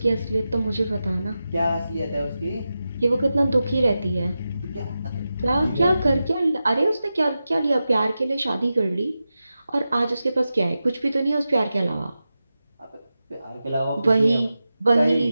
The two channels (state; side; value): inverted; both; correlation -0.92